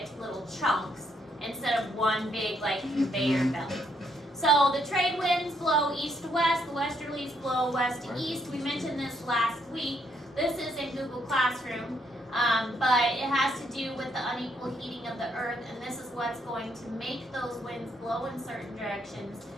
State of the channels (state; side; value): normal; both; correlation 0.73